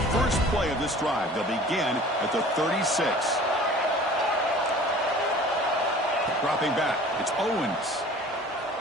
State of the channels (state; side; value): normal; both; correlation 0.45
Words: first play of this drive, they'll begin at the 36. Dropping back, it's Owens.